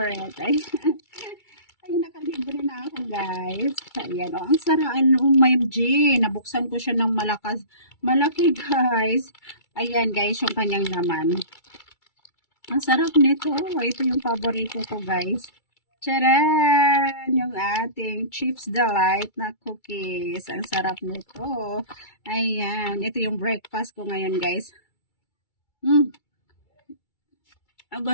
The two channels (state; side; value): late; right; 2.3 ms